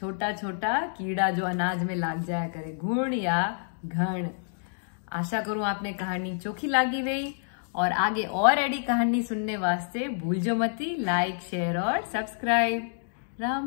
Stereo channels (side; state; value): right; silent; digital silence